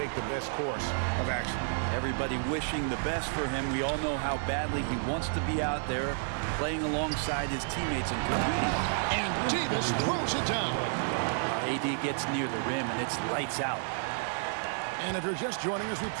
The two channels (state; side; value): silent; left; 57 dB below the other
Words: the best course of action. Everybody wishing the best for him. We all know how badly he wants to be out there playing alongside his teammates and competing. And Davis throws it down. AD gets near the rim, and it's lights out. And if you're just joining us, we